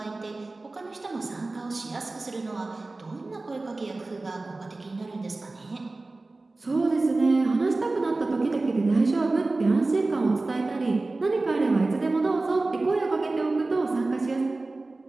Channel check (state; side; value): quieter; left; 3.2 dB